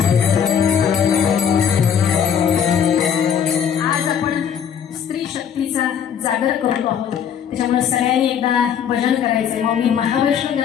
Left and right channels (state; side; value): quieter; right; 8.1 dB